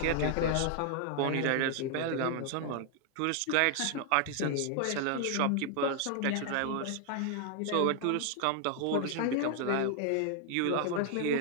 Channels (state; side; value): different; both; correlation 0.00